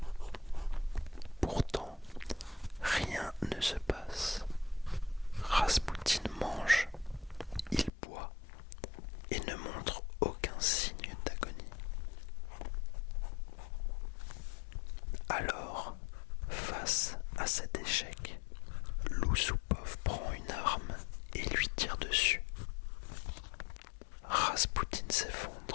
Pourtant, rien ne se passe. Raspoutine mange, il boit et ne montre aucun signe d'agonie. Alors, face à cet échec, Loussoupov prend une arme et lui tire dessus. Raspoutine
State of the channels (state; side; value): drops out; right; at 7.9 s